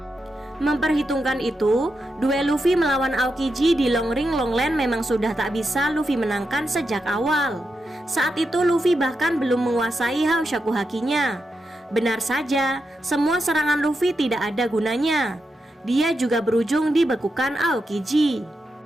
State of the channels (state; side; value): normal; both; correlation 0.87